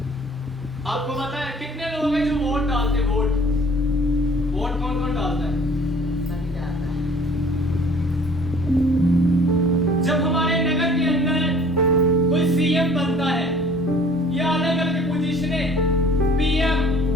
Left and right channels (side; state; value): both; normal; correlation 0.52